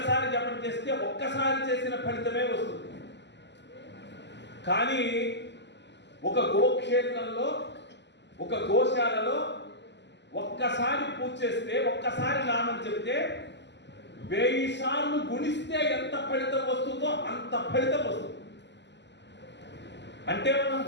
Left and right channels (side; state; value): right; late; 0.51 ms